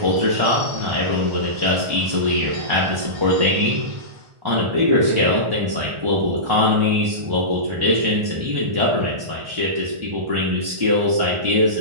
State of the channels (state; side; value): late; left; 1.4 ms